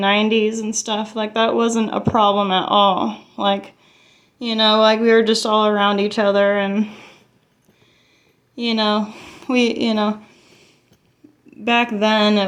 and stuff, like, that wasn't a problem at all. Like, like, we were just all around each other, and, back then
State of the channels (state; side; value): identical; both; correlation 1.00